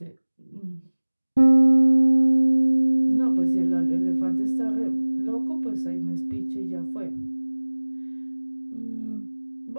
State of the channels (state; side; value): inverted; both; correlation -1.00